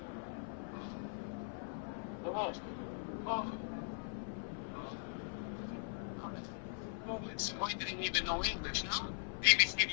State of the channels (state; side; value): silent; right; 51 dB below the other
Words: Oh, it's why didn't even know English now?